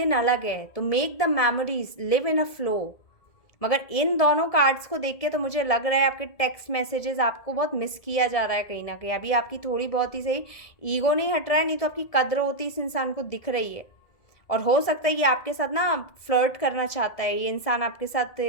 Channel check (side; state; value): right; late; 1.7 ms